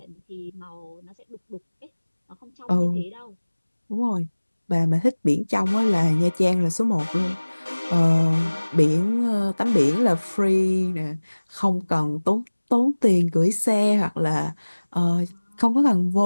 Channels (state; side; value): inverted; both; correlation -1.00